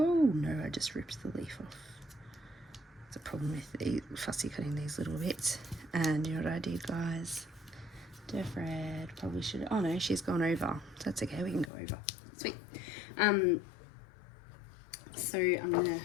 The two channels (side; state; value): right; drops out; at 11.7 s